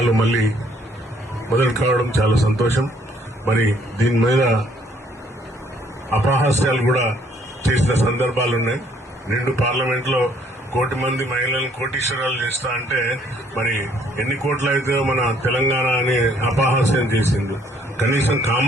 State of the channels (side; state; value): both; normal; correlation 0.64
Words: మళ్లీ మొదలు కావడం చాలా సంతోషం. మరి దీని మీద అపహాస్యాలు కూడా చేసిన సందర్భాలున్నాయి. నిండు పార్లమెంట్ లో 1 కోటి మంది మహిళలను కోటీశ్వరాలు చేస్తా అంటే మరి ఎన్ని కోట్లు అయితే మన తెలంగాణ అని అపహాస్యం చేసింది. కనీసం